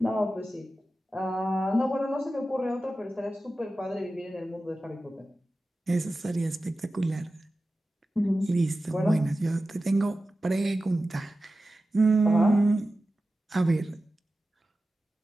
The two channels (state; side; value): normal; both; correlation 0.94